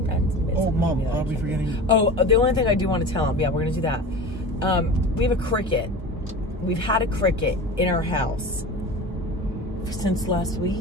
oh, Mom, are we forgetting? Oh, the only thing I do want to tell him, yeah, we're going to do that. We have a cricket. We've had a cricket in our house since last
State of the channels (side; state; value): both; normal; correlation 0.33